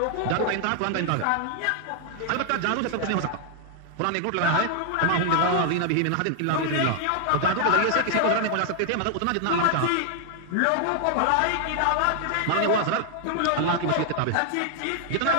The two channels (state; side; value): different; both; correlation 0.00